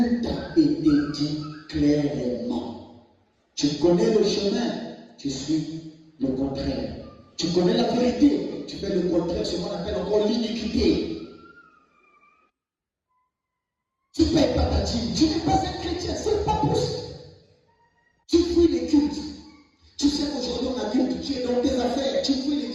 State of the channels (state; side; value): identical; both; correlation 1.00